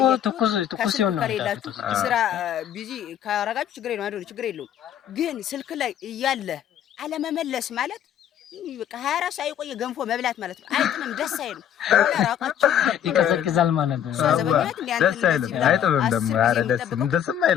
ትኩስ ይሆናል። ስራ ቢዚ ካረጋችሁ ችግር የለውም። ግን ስልክ ላይ እያለ አለመመለስ ማለት በቃ 24 ሰዓት የቆየ ገንፎ መብላት ማለት ነው። አይጥምም፣ ደስ አይልም። ራቃችሁ ይቀዘቅዛል ማለት ነው። ደስ አይልም፣ አይጥምም ደግሞ ኧረ ደስም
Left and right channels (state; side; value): quieter; right; 9.9 dB